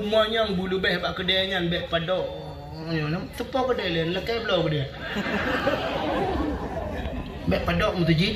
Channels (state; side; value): identical; both; correlation 1.00